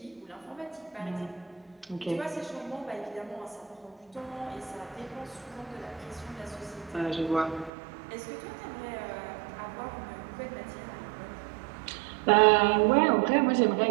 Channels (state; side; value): drops out; left; at 7.7 s